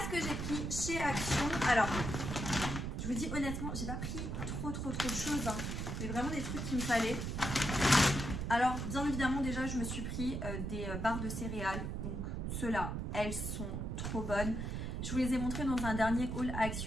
que j'ai pris chez Action. Alors, je vous dis honnêtement, j'ai pas pris trop de choses. Hein. Mais vraiment des trucs qu'il me fallait. Alors, bien évidemment, déjà, je me suis pris des barres de céréales. Donc, ceux-là, elles sont trop bonnes. Je vous les ai montrées dans un dernier haul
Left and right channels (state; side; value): noise; right; rumble, 3 dB below the sound